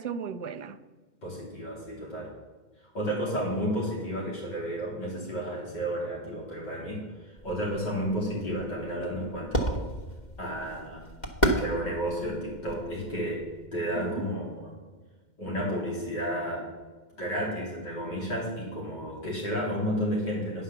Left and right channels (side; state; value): right; late; 2.1 ms